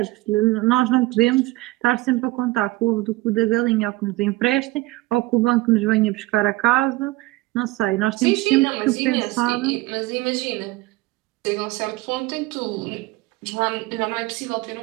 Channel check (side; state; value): left; quieter; 19.8 dB